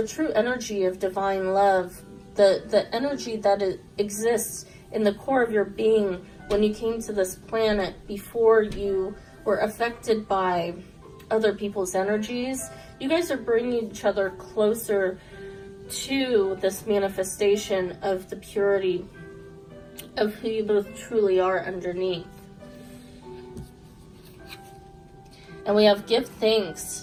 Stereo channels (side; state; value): both; identical; correlation 1.00